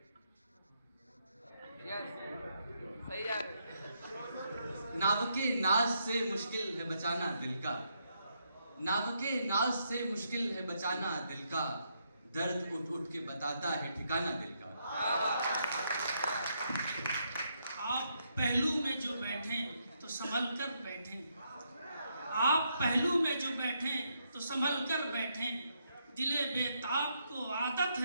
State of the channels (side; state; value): both; inverted; correlation -0.77